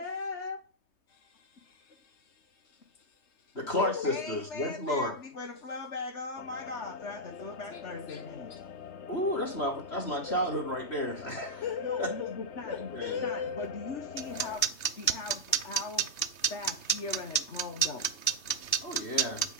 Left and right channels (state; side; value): late; right; 2.8 ms